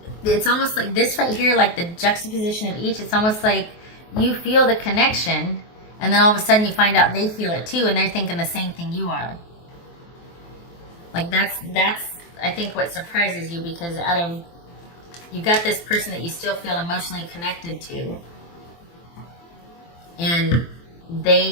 It's almost like this right here, like the juxtaposition of each. It's almost like you feel the connection, and then all of a sudden you find out they feel it too, and they're thinking the same thing you are. Like that's I think what surprises you, because you got this person that you still feel emotionally connected to, and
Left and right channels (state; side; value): late; right; 23 ms